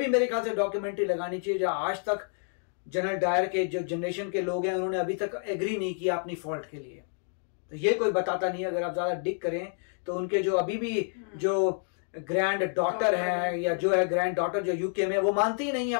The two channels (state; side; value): silent; right; 59 dB below the other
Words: मेरे ख्याल से डॉक्यूमेंट्री लगानी चाहिए, जो आज तक जनरल डायर के जो जनरेशन के लोग हैं उन्होंने अभी तक एग्री नहीं किया अपनी फॉल्ट के लिए, तो ये कोई बताता नहीं। अगर आप ज्यादा डिग करें तो उनके जो अभी भी जो ग्रैंड डॉटर है या जो है ग्रैंड डॉटर जो यूके में, वो मानती ही नहीं है